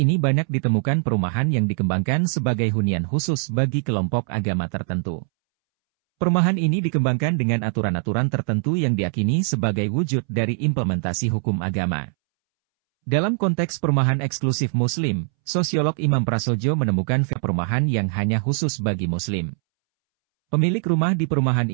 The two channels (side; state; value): left; silent; 64 dB below the other